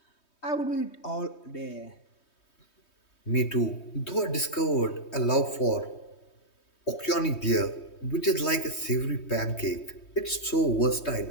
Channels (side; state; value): right; late; 3.2 ms